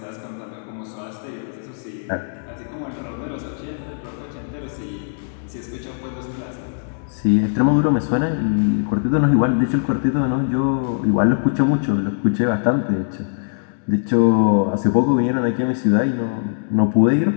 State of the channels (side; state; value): right; silent; 64 dB below the other